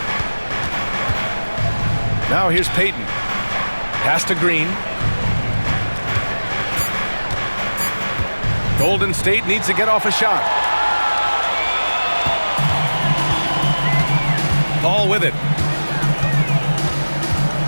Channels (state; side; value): inverted; both; correlation -1.00